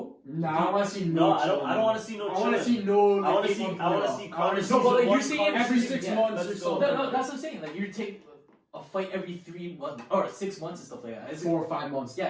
Nah, I want to see No, no. I don't want to see no. I want to chilling. see no. I want to like, see. 8-month I want to layoff. see Conor. No, but like, you're one saying Conor every season. 6 Yeah, months let's or go. so. No, that's what I'm saying. Like you take a fight every 3 months or 6 months and stuff like that. It's 4 or 5 months.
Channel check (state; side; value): identical; both; correlation 1.00